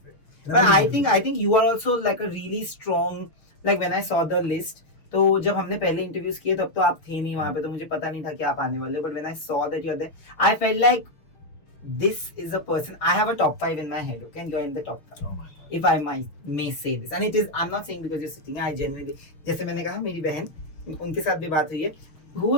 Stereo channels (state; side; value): late; right; 6.4 ms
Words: way. But I think you are also like a really strong, like when I saw the list, तो जब हमने पहले इंटरव्यूज किए तब तो आप थे नहीं वहां पे, तो मुझे पता नहीं था कि आप आने वाले हो, but when I saw that you are there I felt like this is a person. I have a top 5 in my head, okay, and you're in the top 5. Oh my God. If I may say this, and it is, I'm not saying because you're sitting. I genuinely, जैसे मैंने कहा मेरी बहन, उनके साथ भी बात हुई है. Who